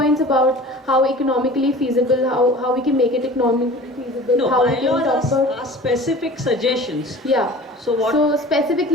about how economically feasible, how we can make it economically feasible, No, how we can talk bylaws about. are specific suggestions. Yeah. So what? So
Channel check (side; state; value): both; normal; correlation 0.41